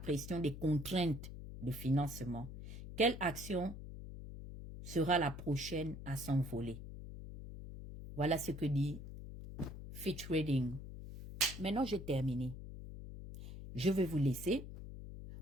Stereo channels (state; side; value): noise; left; hum, 11 dB below the sound